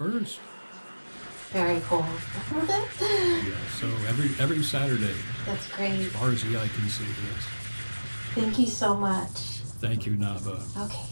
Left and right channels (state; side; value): inverted; both; correlation -1.00